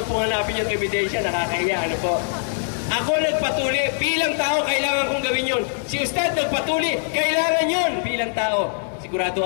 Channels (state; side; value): silent; right; 64 dB below the other